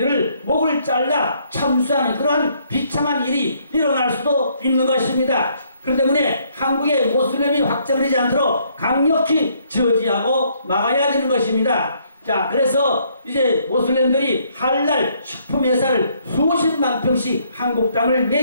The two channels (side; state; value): both; inverted; correlation -0.68